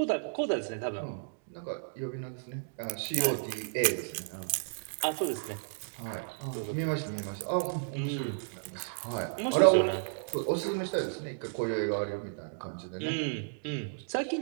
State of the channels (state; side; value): silent; left; digital silence